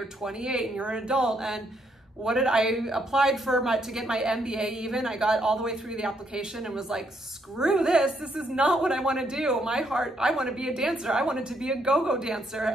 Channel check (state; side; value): normal; both; correlation 0.73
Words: 28 and you're an adult. And I applied to get my MBA even. I got all the way through the application and was like, screw this. This is not what I want to do. My heart, I want to be a dancer. I wanted to be a go-go dancer.